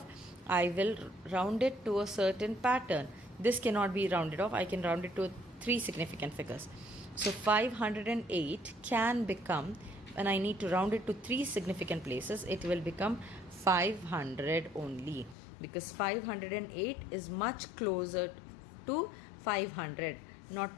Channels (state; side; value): drops out; right; at 15.4 s